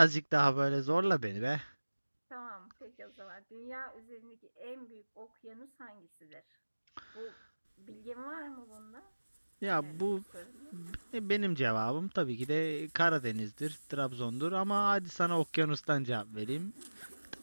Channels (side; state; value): both; inverted; correlation -1.00